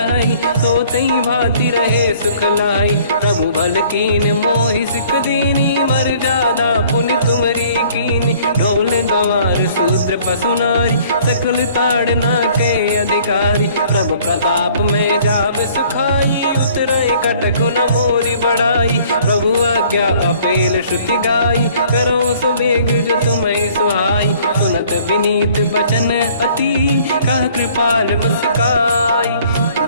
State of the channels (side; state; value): both; inverted; correlation -0.56